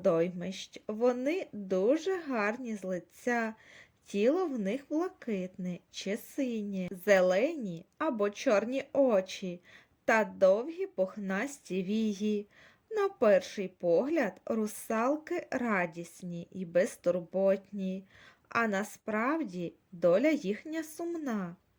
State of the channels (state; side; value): identical; both; correlation 1.00